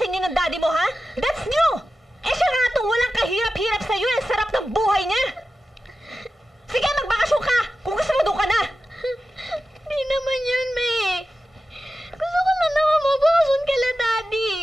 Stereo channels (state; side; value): normal; both; correlation 0.93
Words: inyo ng daddy mo, ha? That's new! Eh siya nga itong walang kahirap-hirap sa'yo, ang sarap ng buhay niya! Sige, magbakasyon ka! Kung gusto mo, doon ka na! Di naman yun, May. Gusto ko na naman mabakasyon kala Daddy.